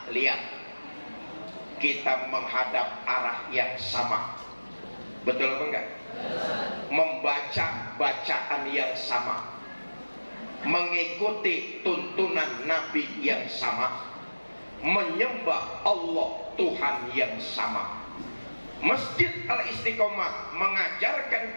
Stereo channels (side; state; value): both; inverted; correlation -1.00